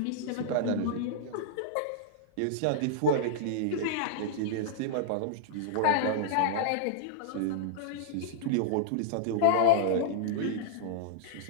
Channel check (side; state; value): both; different; correlation -0.01